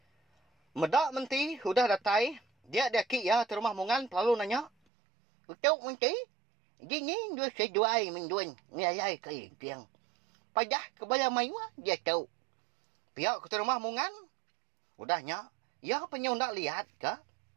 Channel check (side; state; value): left; drops out; at 4.7 s